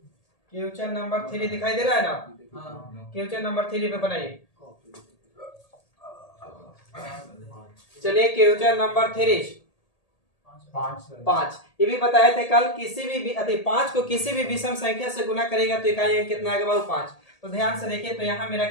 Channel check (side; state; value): right; late; 1.8 ms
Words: क्वेश्चन नंबर 3 दिखाई दे रहा है ना। क्वेश्चन नंबर 3 पे बनाइए। चलिए क्वेश्चन नंबर 3 5। ये भी बताए थे कल, किसी भी 5 को किसी भी विषम संख्या से गुना करेगा तो इकाई अंक कितना आएगा बाबू 5। तो ध्यान से देखिए, तो यहाँ मेरा